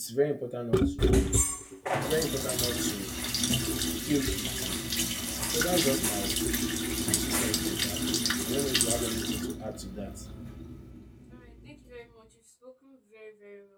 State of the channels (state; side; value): identical; both; correlation 1.00